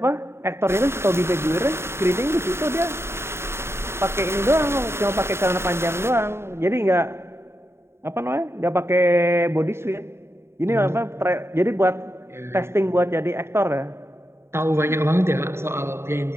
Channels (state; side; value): late; left; 0.12 ms